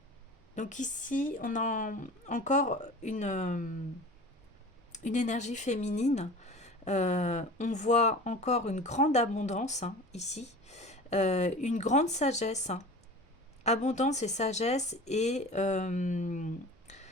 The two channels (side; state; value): both; normal; correlation 0.38